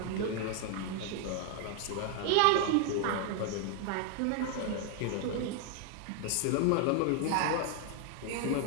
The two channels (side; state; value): both; different; correlation 0.00